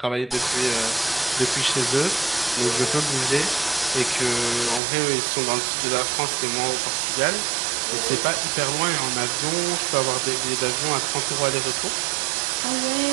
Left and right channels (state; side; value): drops out; left; at 4.8 s